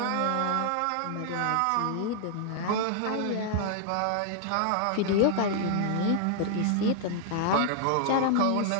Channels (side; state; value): both; different; correlation 0.00